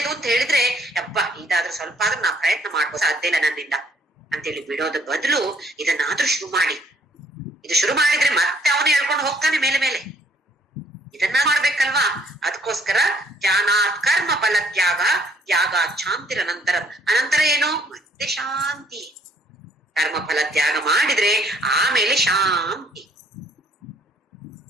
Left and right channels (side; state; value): both; normal; correlation 0.64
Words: ಅಂತ ಹೇಳಿದ್ರೆ ಯಪ್ಪ ಇದಾದ್ರೂ ಸ್ವಲ್ಪ ಆದ್ರೂ ನಾ ಪ್ರಯತ್ನ ಮಾಡ್ಬೋದು, ಸಾಧ್ಯ ಇಲ್ಲ ನನ್ನಿಂದ ಅಂತೇಳಿ ಬಿಡೋದ ಬದಲು ಇದನ್ನಾದ್ರೂ ಶುರು ಮಾಡಿ. ಇದು ಶುರು ಮಾಡಿದ್ರೆ ಮತ್ತೆ ಅವನು ಹೇಳ್ಕೊಂಡು ಹೋಗ್ತಾನೆ ಮೇಲೆ ಮೇಲೆ. ಇದನ್ನ ಮಾಡ್ಬೇಕಲ್ವಾ? ಅದಕ್ಕೋಸ್ಕರ ಧ್ಯಾನಾತ್ ಕರ್ಮ ಫಲ ತ್ಯಾಗ, ತ್ಯಾಗ ಶಾಂತಿರ ನಂತರ, ಅನಂತರ ಏನು? ಮತ್ತೆ ಶಾಂತಿ. ಕರ್ಮ ಫಲ ತ್ಯಾಗ ಮಾಡಿದ್ರೆ ಆಮೇಲೆ ಶಾಂತಿ.